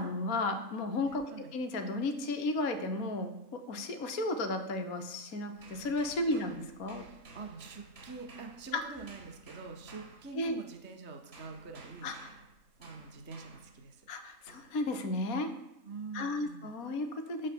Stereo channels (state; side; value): late; right; 4.1 ms